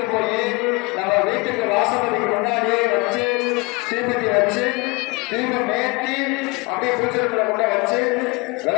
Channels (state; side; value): quieter; right; 26.6 dB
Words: போய் நம்ம வீட்டுக்கு வாசப்படிக்கு முன்னாடியே வச்சு தீபத்தி வச்சு தீபம் ஏற்றி அப்படியே பூஜைகளை கொண்ட வச்சு